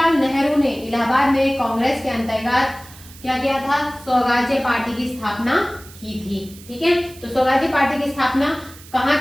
नेहरू ने इलाहाबाद में कांग्रेस के अंतर्गत क्या किया था, स्वराज्य पार्टी की स्थापना की थी। ठीक है, तो स्वराज्य पार्टी की स्थापना कहाँ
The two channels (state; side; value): noise; right; hiss, 20 dB below the sound